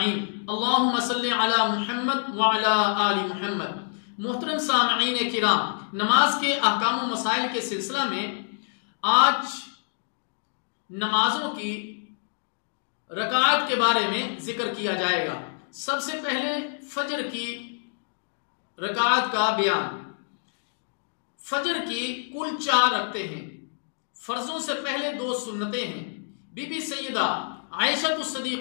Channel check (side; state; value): right; silent; digital silence